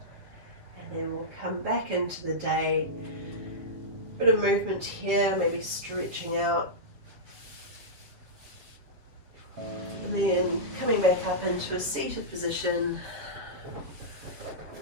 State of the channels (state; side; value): late; left; 7.4 ms